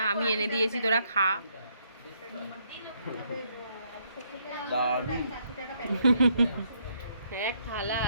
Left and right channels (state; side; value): inverted; both; correlation -0.72